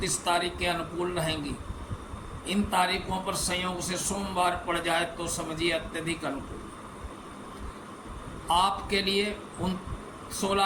तारीखें अनुकूल रहेंगी। इन तारीखों पर संयोग से सोमवार पड़ जाए तो समझिए अत्यधिक अनुकूल। आपके लिए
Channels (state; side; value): identical; both; correlation 1.00